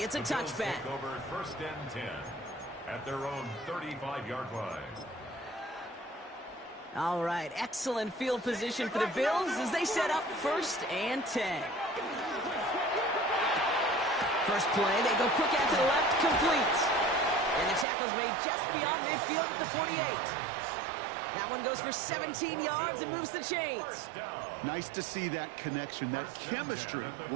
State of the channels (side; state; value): left; drops out; at 17.9 s